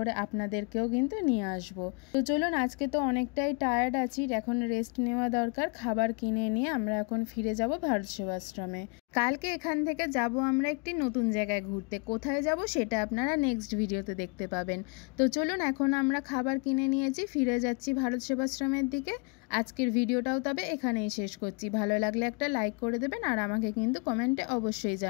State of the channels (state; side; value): quieter; right; 33.0 dB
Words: আপনাদেরকেও কিন্তু নিয়ে আসবো। তো চলুন, আজকে তো অনেকটাই টায়ার্ড আছি, এখন রেস্ট নেওয়া দরকার। খাবার কিনে নিয়ে আমরা এখন ফিরে যাব ভারত সেবাশ্রমে। কালকে এখান থেকে যাব আমরা একটি নতুন জায়গায় ঘুরতে। কোথায় যাব সেটা আপনারা নেক্সট ভিডিওতে দেখতে পাবেন। তো চলুন, এখন আমরা খাবার কিনে নিয়েছি, ফিরে যাচ্ছি ভারত সেবাশ্রমের দিকে। আজকের ভিডিওটাও তবে এখানেই শেষ করছি। ভালো লাগলে একটা লাইক করে দেবেন আর আমাকে কিন্তু কমেন্টে অবশ্যই